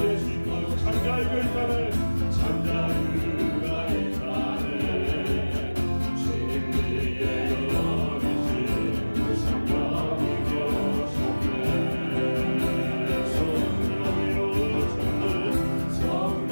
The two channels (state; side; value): inverted; both; correlation -1.00